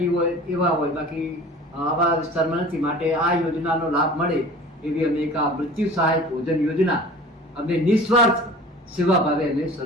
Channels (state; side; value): normal; both; correlation 0.42